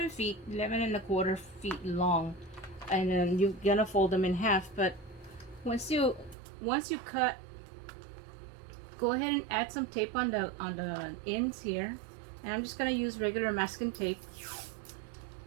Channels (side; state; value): left; drops out; at 6.4 s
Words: feet, 11 1/4 feet long. And then you're gonna fold them in half. But once you cut, go ahead and add some tape on the ends here. And I'm just gonna use regular masking tape,